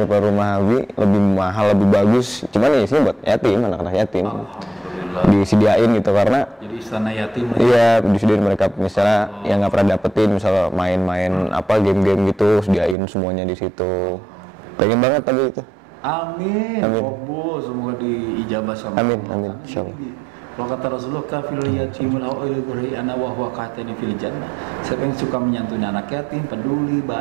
rumah Abi, lebih mahal, lebih bagus. Cuman ya isinya buat yatim, anak-anak yatim. Disediain gitu, karena jadi istana yatim. Iya, disediain mereka misalnya yang nggak pernah dapetin, misalnya main-main apa game-game gitu, sediain semuanya di situ. Pengen banget tapi itu. Amin. Oh, semoga diijabah sama Amin, Allah. amin, insyaallah. Kalau kata Rasulullah, kafil yatimul awil ana wa huwa qatani fil jannah. Siapa yang suka menyantuni anak yatim, peduli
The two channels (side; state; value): left; drops out; at 13.0 s